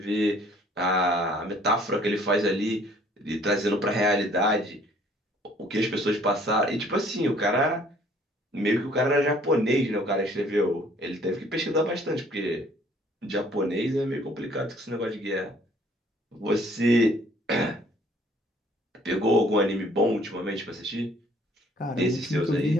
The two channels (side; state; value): both; normal; correlation 0.58